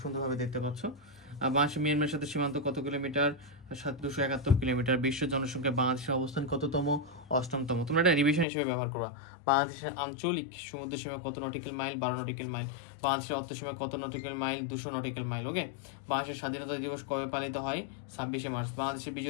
সুন্দরভাবে দেখতে পাচ্ছ। বাংলাদেশ মিয়ানমারের সাথে সীমান্ত কত কিলোমিটার, 271 কিলোমিটার। বিশ্ব জনসংখ্যা বাংলাদেশের অবস্থান কততম, 8তম। তোমরা এটা রিভিশন হিসেবে ব্যবহার করবা। বাংলাদেশের আঞ্চলিক সমুদ্র সীমা কত নটিক্যাল মাইল, 12 নটিক্যাল মাইল। বাংলাদেশের অর্থসীমা কত নটিক্যাল মাইল, 200 নটিক্যাল মাইল। ওকে, বাংলাদেশের স্বাধীনতা দিবস কবে পালিত হয়, 26শে মার্চ। বাংলাদেশের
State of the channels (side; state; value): right; drops out; at 8.5 s